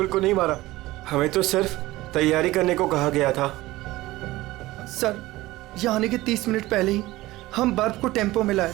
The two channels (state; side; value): quieter; left; 18.1 dB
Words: को नहीं मारा, हमें तो सिर्फ तैयारी करने को कहा गया था। सर, यहाँ आने के 30 मिनट पहले ही हम बर्फ को टेम्पो में लाए।